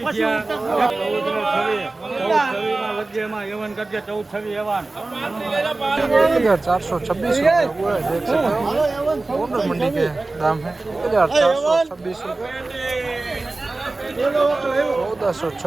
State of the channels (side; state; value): left; quieter; 3.2 dB